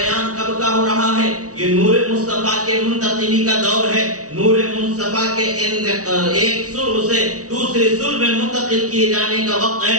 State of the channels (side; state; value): left; late; 0.67 ms